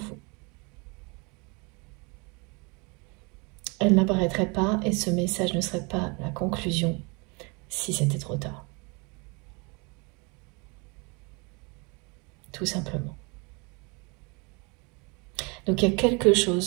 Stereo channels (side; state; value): left; quieter; 30.2 dB